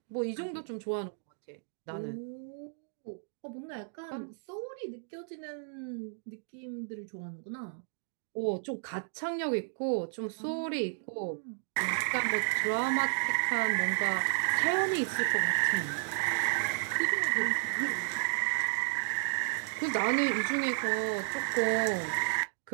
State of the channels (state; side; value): silent; left; digital silence